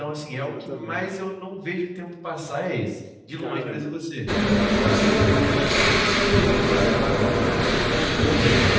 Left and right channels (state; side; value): identical; both; correlation 1.00